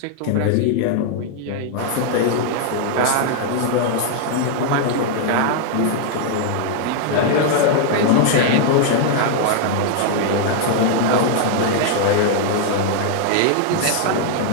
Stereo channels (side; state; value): both; different; correlation 0.00